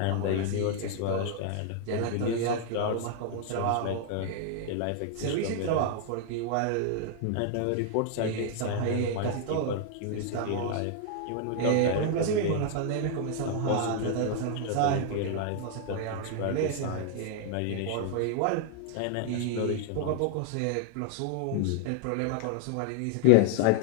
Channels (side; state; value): both; different; correlation -0.01